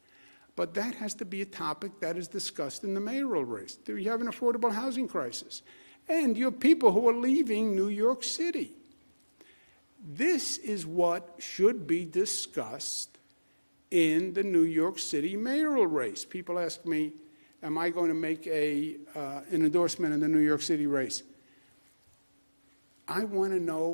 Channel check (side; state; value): both; inverted; correlation -1.00